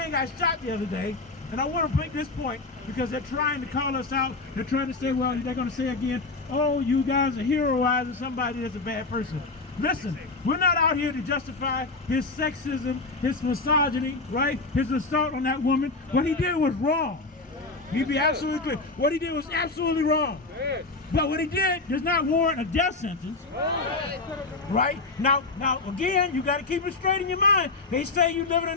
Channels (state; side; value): quieter; right; 3.6 dB